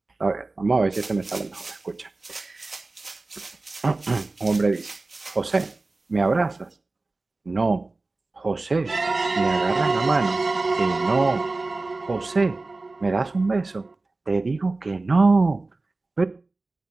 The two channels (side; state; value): left; quieter; 3.3 dB